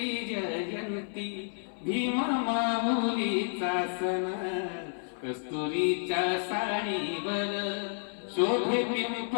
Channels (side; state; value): right; silent; 56 dB below the other